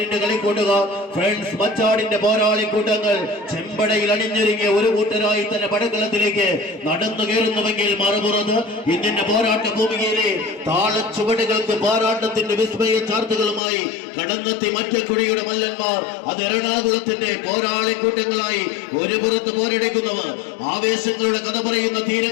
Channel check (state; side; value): drops out; right; at 13.6 s